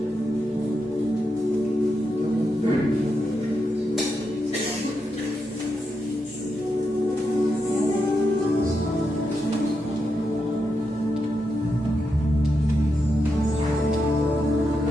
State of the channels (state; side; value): normal; both; correlation 0.85